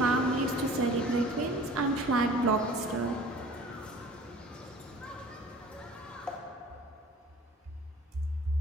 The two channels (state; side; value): normal; both; correlation 0.46